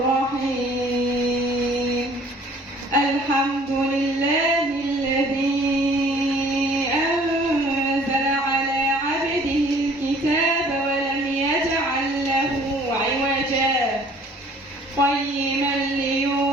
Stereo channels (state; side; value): normal; both; correlation 0.54